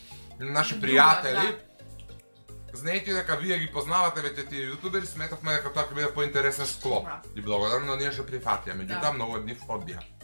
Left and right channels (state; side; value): inverted; both; correlation -1.00